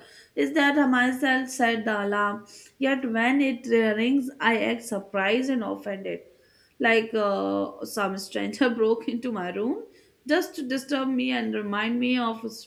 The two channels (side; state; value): both; identical; correlation 1.00